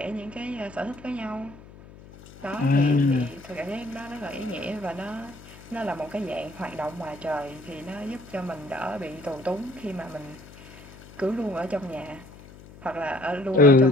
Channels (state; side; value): noise; left; hum, 19 dB below the sound